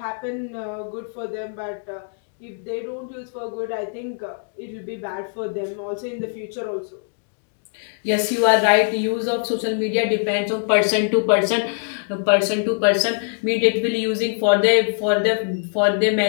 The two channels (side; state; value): right; silent; 61 dB below the other